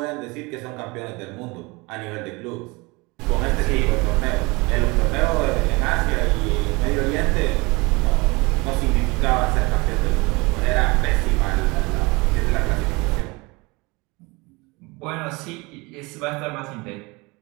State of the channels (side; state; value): left; quieter; 25.4 dB